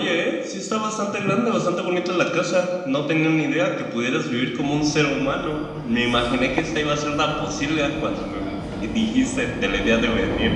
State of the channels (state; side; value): identical; both; correlation 1.00